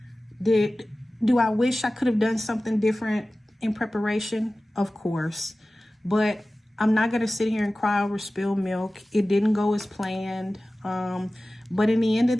Do I wish I could have done something different in preparation? Of course. But I'm not going to sit here and cry over spilled milk. It didn't go as planned. But at the end of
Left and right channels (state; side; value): normal; both; correlation 0.96